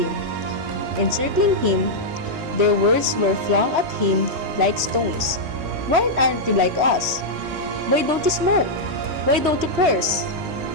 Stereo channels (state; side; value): late; left; 3.0 ms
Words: Encircling him, their words were flung at him like stones. "Why aren't you like us? Why don't you smoke? Why don't you curse?"